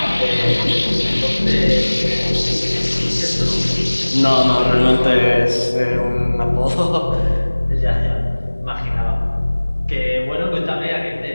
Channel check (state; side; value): inverted; both; correlation -1.00